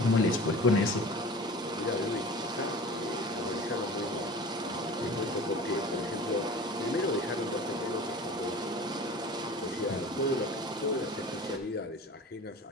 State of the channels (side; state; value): both; normal; correlation 0.38